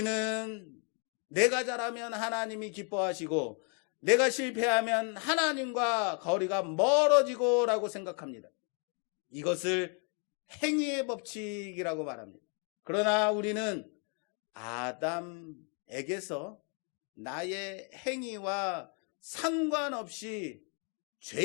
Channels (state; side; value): quieter; right; 37.6 dB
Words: 내가 잘하면 하나님이 기뻐하시고 내가 실패하면 하나님과 거리가 멀어지고 라고 생각합니다. 이것을 행위의 법칙이라고 말합니다. 그러나 우리는 아담에게서 나의 행위와 상관없이